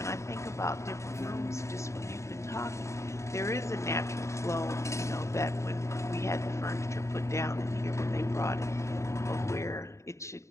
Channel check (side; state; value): right; late; 0.14 ms